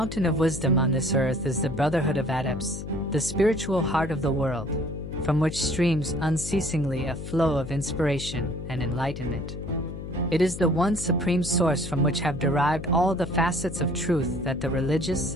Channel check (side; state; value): left; noise; hum, 9 dB below the sound